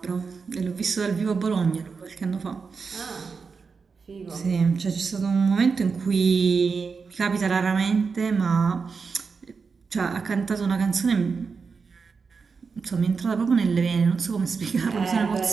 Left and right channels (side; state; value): left; quieter; 5.1 dB